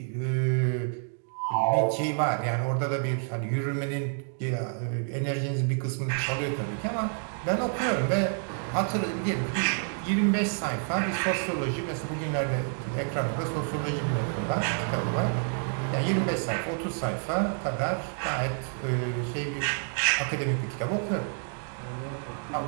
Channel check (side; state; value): left; silent; 57 dB below the other